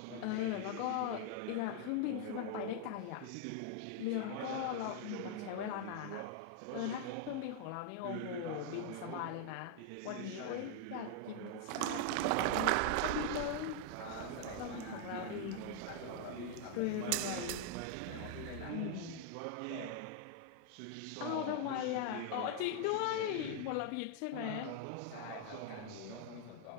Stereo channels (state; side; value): different; both; correlation 0.00